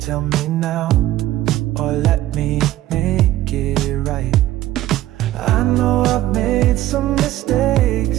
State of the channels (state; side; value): quieter; left; 14.5 dB